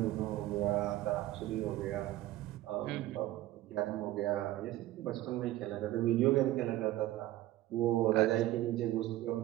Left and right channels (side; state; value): left; quieter; 15.5 dB